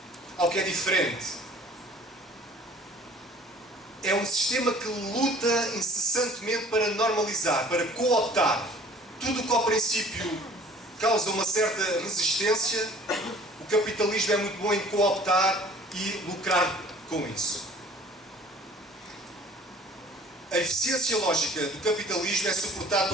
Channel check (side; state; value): both; normal; correlation 0.50